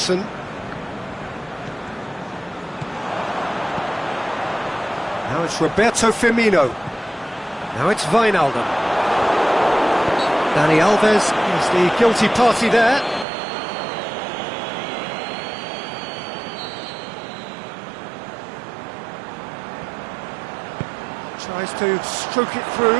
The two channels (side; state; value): left; drops out; at 13.2 s